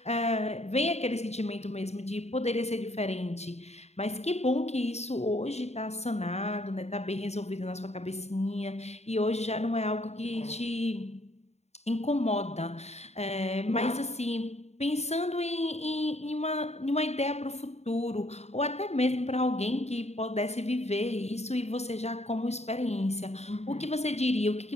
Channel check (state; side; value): late; right; 0.32 ms